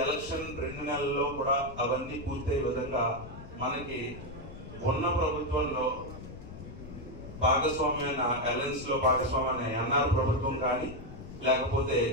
ఎలక్షన్ 2 నెలల్లో కూడా అవన్నీ పూర్తయ్యే విధంగా మనకి ఉన్న ప్రభుత్వంలో భాగస్వామ్యమైన అలయన్స్ లో భాగస్వామ్యమైన ఎన్ఆర్ ప్రభుత్వం కానీ లేకపోతే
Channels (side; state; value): left; noise; rumble, 13 dB below the sound